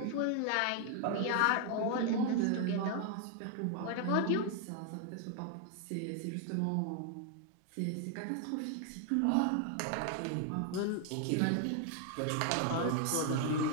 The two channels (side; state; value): both; different; correlation 0.00